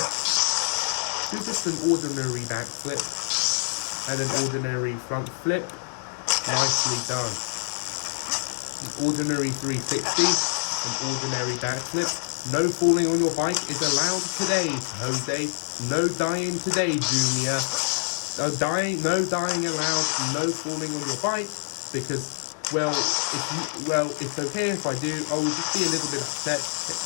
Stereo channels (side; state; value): right; silent; digital silence